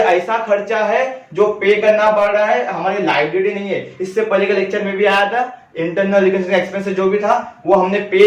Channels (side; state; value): both; identical; correlation 1.00